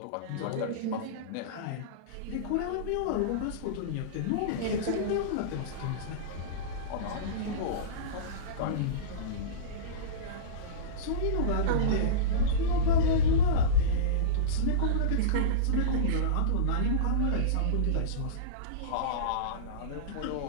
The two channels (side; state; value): both; different; correlation -0.06